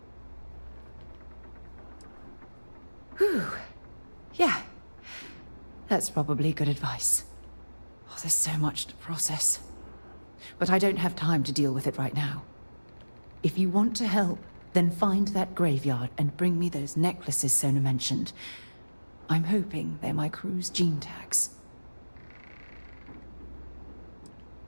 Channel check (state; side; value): inverted; both; correlation -1.00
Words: Whew. Yeah. That's probably good advice. Oh, there's so much to process. but I don't have time to deal with it right now. If you want to help, then find that graveyard and bring me those necklaces Sona mentioned. I'm hoping they're my crew's gene tags.